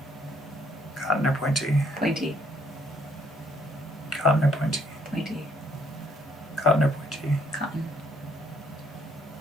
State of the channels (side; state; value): both; normal; correlation 0.66